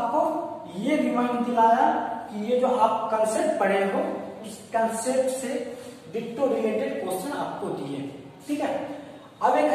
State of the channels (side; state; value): both; identical; correlation 1.00